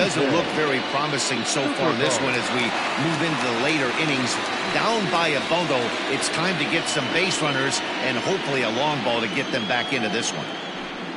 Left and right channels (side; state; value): both; identical; correlation 1.00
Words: look very promising so far in this one as we move into the later innings. Down by a bundle, it's time to get some base runners and hopefully a long ball to get them back into this one.